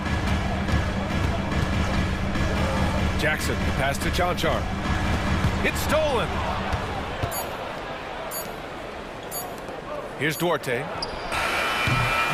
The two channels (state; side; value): identical; both; correlation 1.00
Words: Jackson, pass to Chanchar. It's stolen. Here's Duarte.